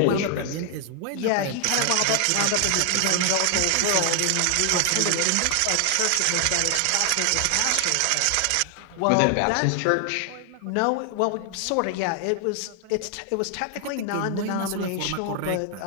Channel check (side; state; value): both; different; correlation 0.00